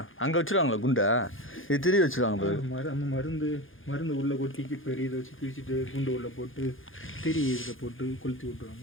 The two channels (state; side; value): late; right; 0.58 ms